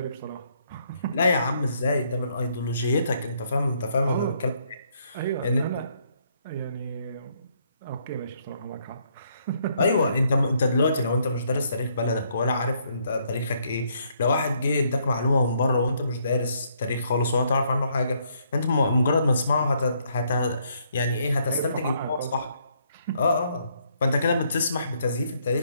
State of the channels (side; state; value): both; inverted; correlation -0.71